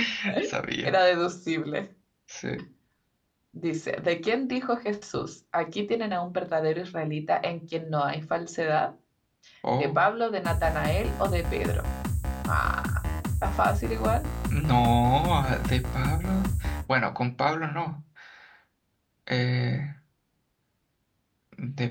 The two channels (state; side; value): identical; both; correlation 1.00